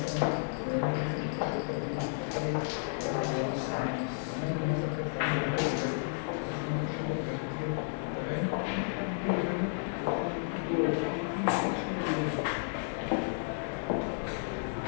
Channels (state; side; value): silent; right; digital silence